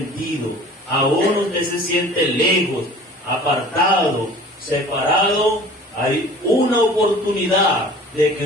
aún usted se siente lejos, apartado, separado, hay una oportunidad de que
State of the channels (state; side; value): normal; both; correlation 0.45